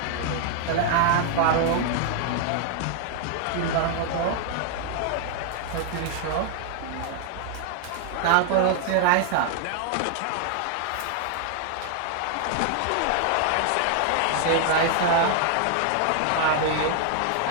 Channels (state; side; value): different; both; correlation 0.00